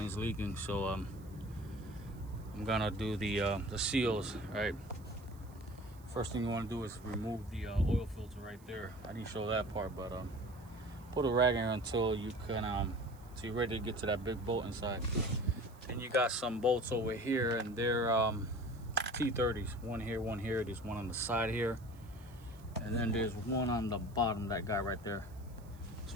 is leaking, so I'm gonna do the seals. Right. First thing you want to do is remove the oil filter right there. I didn't show that part, but put a rag in until you can so you're ready to get to that big bolt inside. Then you got some bolts over here, and they're T30s. One here, there's one on the side here, and then there's one on the bottom, that guy right there.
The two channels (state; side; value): noise; right; hiss, 27 dB below the sound